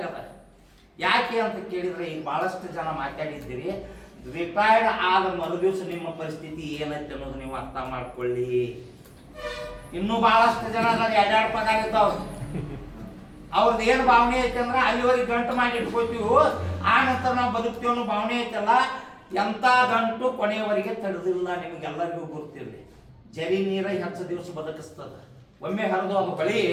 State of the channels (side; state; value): both; identical; correlation 1.00